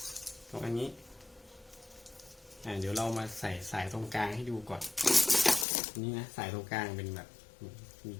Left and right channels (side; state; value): right; drops out; at 5.7 s